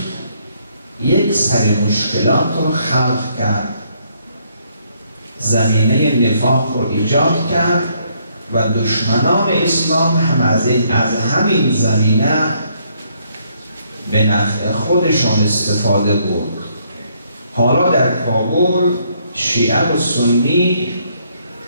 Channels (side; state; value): both; inverted; correlation -0.70